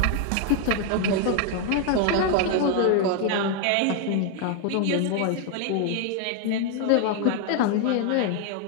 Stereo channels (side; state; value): both; different; correlation 0.00